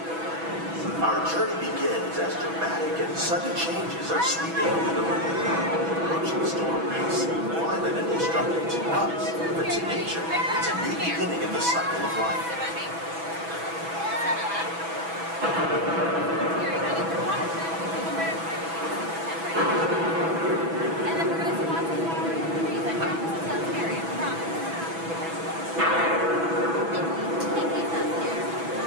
Our journey begins as dramatic and sudden changes are sweeping over the land. Approaching storm may seem violent and destructive to us, but to nature, it's a new beginning in the cycle of life.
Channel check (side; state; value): left; late; 6.1 ms